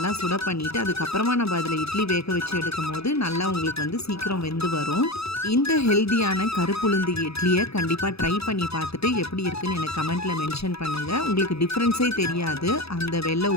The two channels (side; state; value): right; late; 0.78 ms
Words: சுட பண்ணிவிட்டு அதுக்கப்புறமா நம்ம அதில் இட்லி வேக வச்சு எடுக்கும் போது நல்லா உங்களுக்கு சீக்கிரம் வெந்து வரும். இந்த ஹெல்தியான கருப்புளுந்து இட்லியை கண்டிப்பாக ட்ரை பண்ணி பார்த்துட்டு எப்படி இருக்குன்னு எனக்கு கமெண்ட்டில் மென்ஷன் பண்ணுங்கள். உங்களுக்கு டிஃப்ரென்ஸே தெரியாது அந்த வெள்ளை